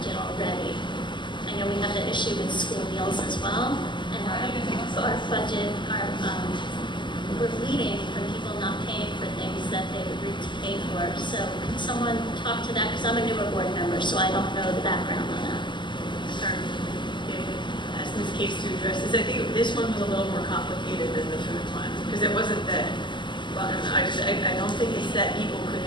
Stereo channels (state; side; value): late; right; 0.22 ms